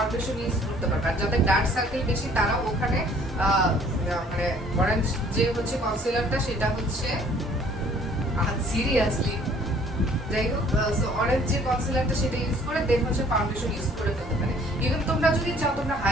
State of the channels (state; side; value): normal; both; correlation 0.57